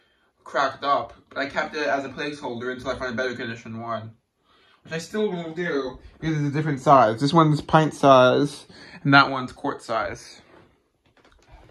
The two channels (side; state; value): both; identical; correlation 1.00